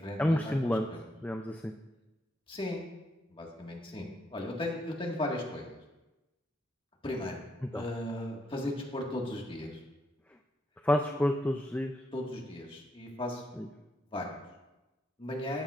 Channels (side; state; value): both; normal; correlation 0.78